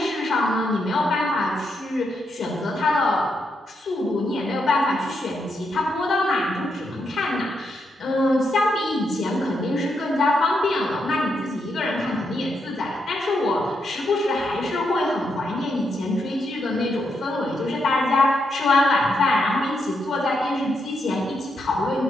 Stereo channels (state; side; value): normal; both; correlation 0.81